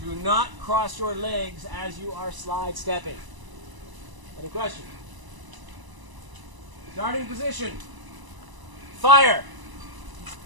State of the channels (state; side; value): late; left; 1.0 ms